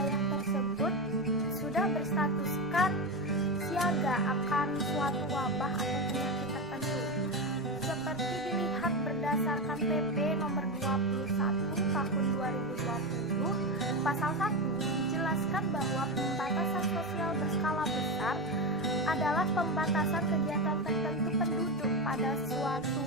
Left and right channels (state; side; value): normal; both; correlation 0.15